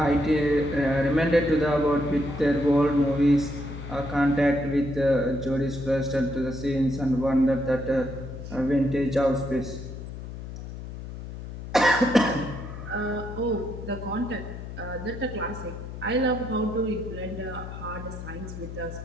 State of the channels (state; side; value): noise; left; hum, 10 dB below the sound